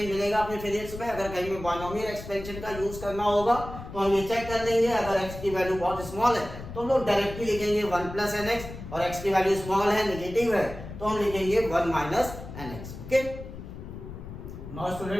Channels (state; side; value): noise; left; rumble, 11 dB below the sound